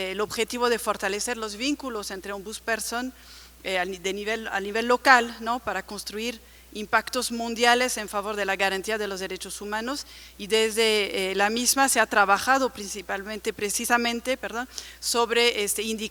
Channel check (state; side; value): identical; both; correlation 1.00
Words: objetivo de fortalecer los vínculos entre ombudsperson a nivel local, ¿no?, para construir impactos mundiales en favor de la garantía de los derechos humanos, y desde la misma se ha trabajado precisamente sobre